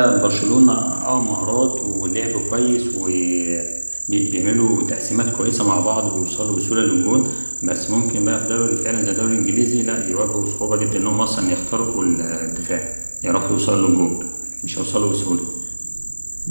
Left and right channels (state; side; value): inverted; both; correlation -1.00